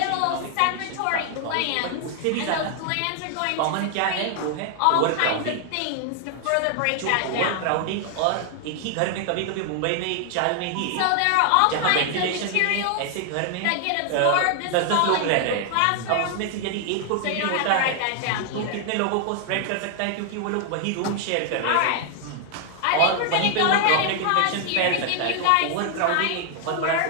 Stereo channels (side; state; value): both; different; correlation 0.00